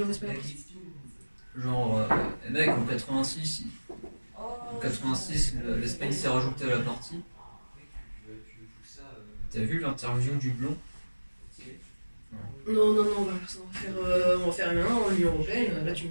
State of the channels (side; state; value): both; inverted; correlation -1.00